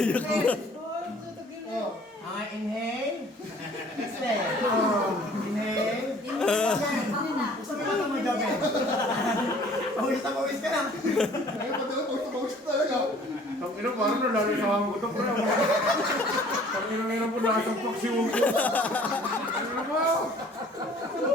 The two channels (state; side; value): normal; both; correlation 0.53